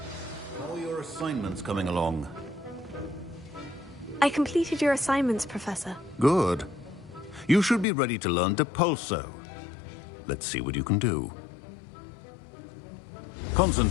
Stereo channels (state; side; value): drops out; right; at 7.9 s